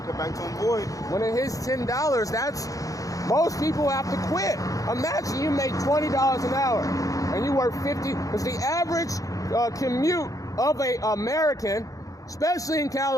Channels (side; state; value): right; late; 0.17 ms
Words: come back to him void. When it hits $10, that's most people have to quit. Imagine you make $20 an hour and you work 50. Because the average commute of a American, especially in